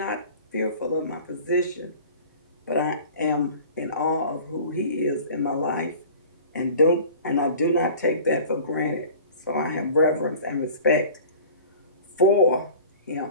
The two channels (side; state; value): both; inverted; correlation -0.44